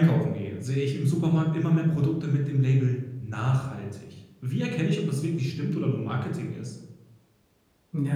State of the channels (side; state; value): both; identical; correlation 1.00